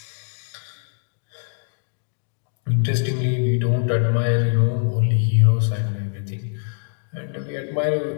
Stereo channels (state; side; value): silent; right; 63 dB below the other